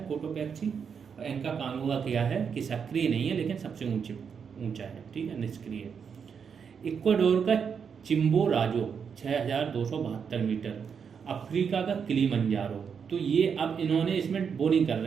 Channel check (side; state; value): left; quieter; 6.7 dB